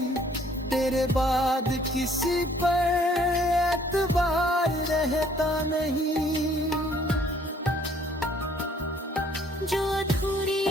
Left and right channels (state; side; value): normal; both; correlation 0.61